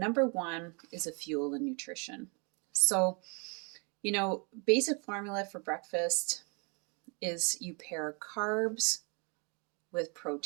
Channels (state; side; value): quieter; left; 34.0 dB